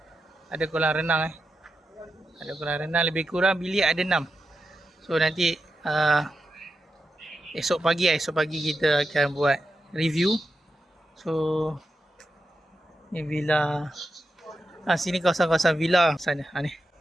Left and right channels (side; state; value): both; normal; correlation 0.89